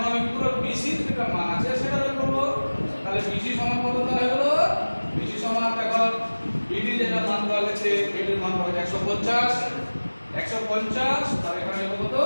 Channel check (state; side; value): inverted; both; correlation -1.00